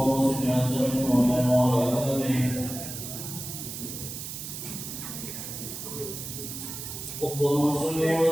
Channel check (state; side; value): noise; right; hiss, 8 dB below the sound